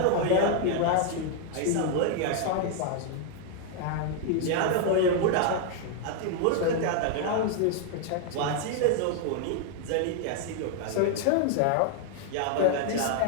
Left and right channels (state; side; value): different; both; correlation 0.00